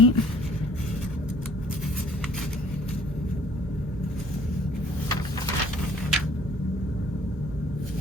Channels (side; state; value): both; normal; correlation 0.56